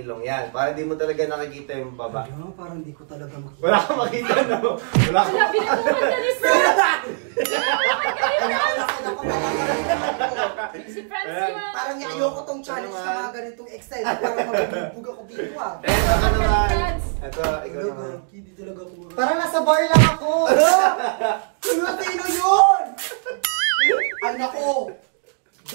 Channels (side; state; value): left; silent; 64 dB below the other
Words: Yan. Para di mo talaga nakikita yung baba. Ano, parang hindi ko talaga makita. Wala kang makita, no? Wala kang Wala, binubukan ka ni Fran! Si Franz yung... Parang ayoko tong challenge na mga ganitong excited. Parang magbibug ako dito ah. Eh, ako naman. Ito, ikaw naman. Hindi talaga ako makita. Parang nasa bar lang ako. Sino yun? Ay nako.